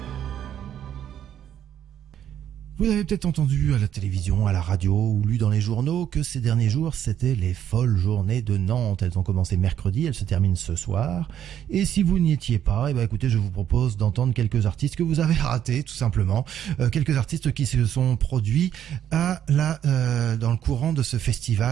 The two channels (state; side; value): quieter; left; 10.1 dB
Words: Vous avez peut-être entendu à la télévision, à la radio ou lu dans les journaux que ces derniers jours, c'était les folles journées de Nantes. Elles ont commencé mercredi, elles se terminent ce soir. Et si vous n'y étiez pas, écoutez, je vous propose d'entendre quelques artistes que vous avez ratés, tout simplement. Quelques artistes qui se sont produits dans le courant de ce